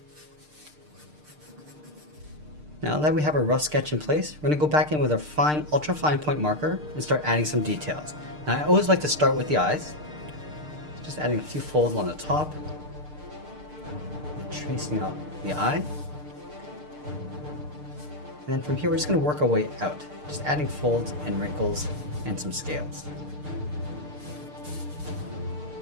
Now that we have our rough sketch in place, we're going to go back in with our fine, ultra fine point marker and start adding some details. Now I always like to start with the eyes. Just adding a few folds on the top. And tracing out the eye. And then from here we're just going to work our way out. Just adding folds and wrinkles and some scales.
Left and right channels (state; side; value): late; left; 6.6 ms